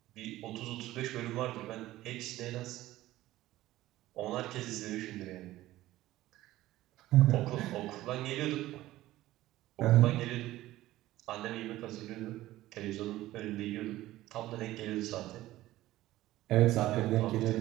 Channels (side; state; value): left; quieter; 15.9 dB